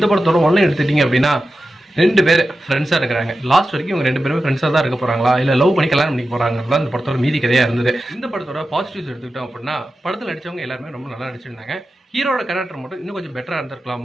படத்தோட ஒன்லைன் எடுத்துட்டீங்க அப்படின்னா 2 பேர் ஃப்ரெண்ட்ஸாக இருக்கிறாங்க. லாஸ்ட் வரைக்கும் இவங்க 2 பேருமே ஃப்ரெண்ட்ஸாக தான் இருக்க போகிறாங்களா இல்லை லவ் பண்ணி கல்யாணம் பண்ணி போகிறாங்களா இந்த படத்தோட மீதி கதையாக இருந்தது. இந்த படத்தோட பாசிட்டிவ்ஸ் எடுத்துக்கிட்டோம் அப்படின்னா படத்தில் நடித்தவங்க எல்லாருமே ரொம்ப நல்லா நடிச்சிருந்தாங்க. ஹீரோட கேரக்டர் மட்டும் இன்னும் கொஞ்சம் பெட்டராக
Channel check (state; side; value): normal; both; correlation 0.92